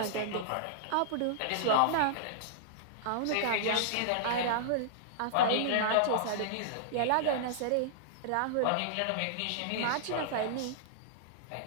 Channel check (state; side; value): different; both; correlation -0.02